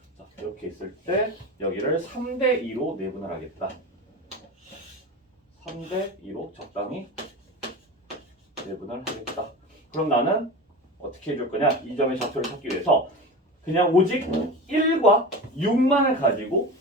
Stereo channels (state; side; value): normal; both; correlation 0.28